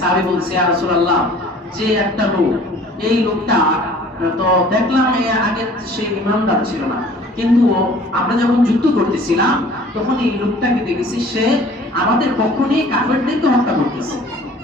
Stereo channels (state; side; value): normal; both; correlation 0.50